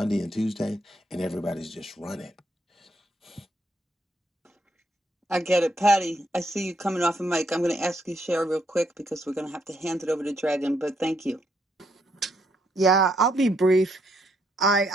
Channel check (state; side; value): normal; both; correlation 0.75